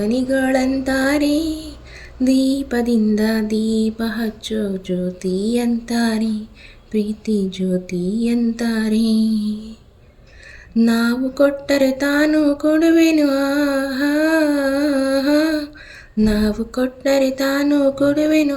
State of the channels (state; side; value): identical; both; correlation 1.00